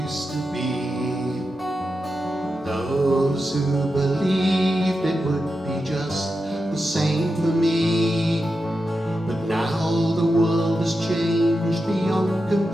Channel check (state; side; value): normal; both; correlation 0.89